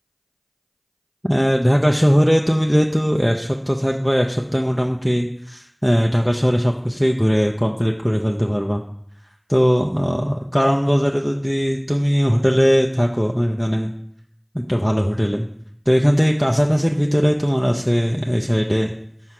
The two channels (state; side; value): identical; both; correlation 1.00